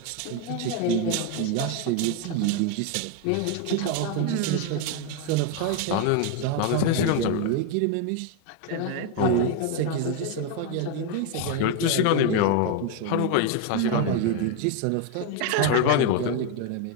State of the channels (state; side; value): different; both; correlation 0.01